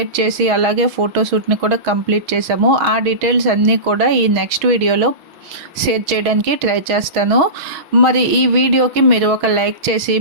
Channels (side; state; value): left; late; 6.3 ms